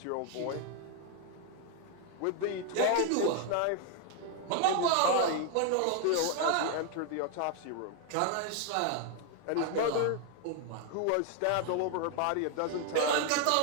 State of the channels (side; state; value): both; different; correlation 0.00